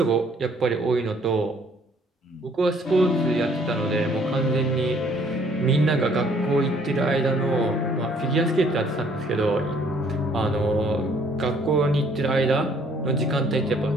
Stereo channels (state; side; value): normal; both; correlation 0.61